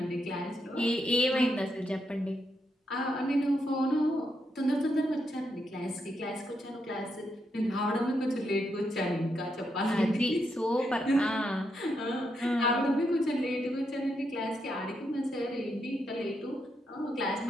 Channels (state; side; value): normal; both; correlation 0.81